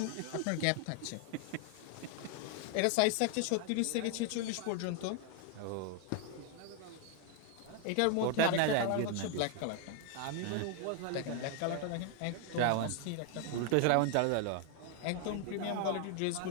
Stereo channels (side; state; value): both; different; correlation 0.00